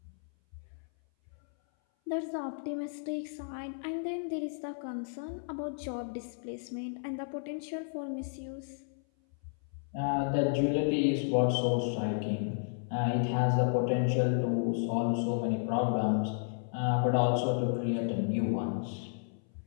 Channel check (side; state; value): right; silent; 56 dB below the other